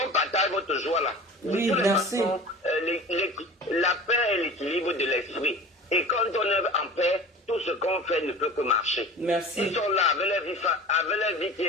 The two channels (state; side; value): normal; both; correlation 0.38